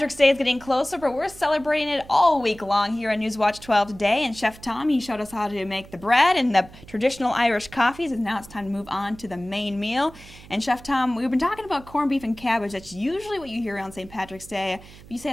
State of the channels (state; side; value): noise; right; hum, 20 dB below the sound